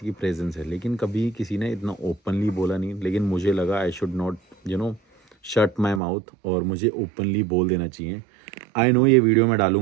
की प्रेजेंस है, लेकिन कभी किसी ने इतना ओपनली बोला नहीं। लेकिन मुझे लगा I should not shut my mouth, और मुझे ओपनली बोल देना चाहिए। आई नो ये वीडियो मैं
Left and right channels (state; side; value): drops out; left; at 6.0 s